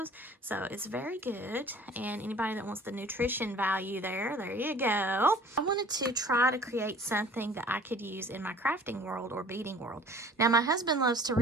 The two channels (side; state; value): both; normal; correlation 0.48